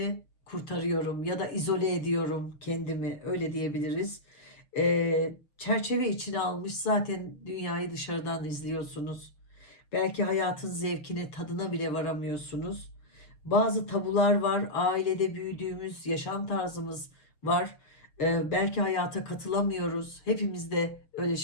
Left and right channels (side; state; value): right; late; 6.4 ms